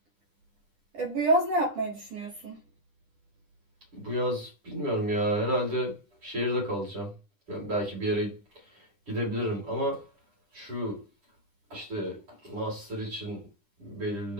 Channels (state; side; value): late; left; 10 ms